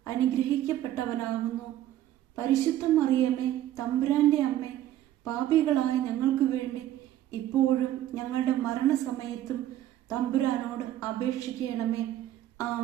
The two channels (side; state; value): left; quieter; 12.8 dB